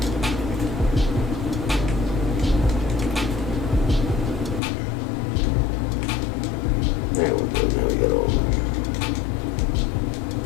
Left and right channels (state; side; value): drops out; right; at 4.6 s